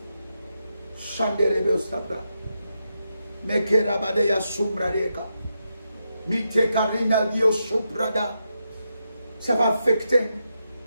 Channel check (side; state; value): both; inverted; correlation -0.85